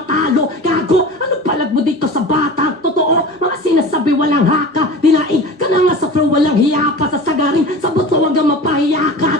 gago, ano palag mo dito sa bata, totoo, mga sinasabi walang haka, dinain ka na nga sa flow, walang hiya pa, sa sagarin, sa buto hanggang mapahiya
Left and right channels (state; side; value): normal; both; correlation 0.35